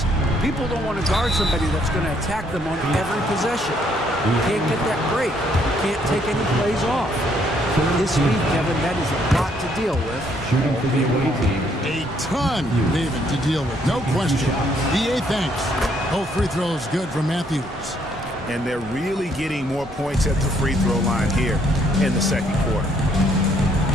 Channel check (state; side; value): normal; both; correlation 0.68